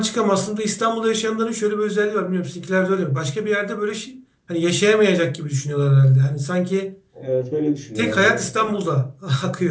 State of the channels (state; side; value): identical; both; correlation 1.00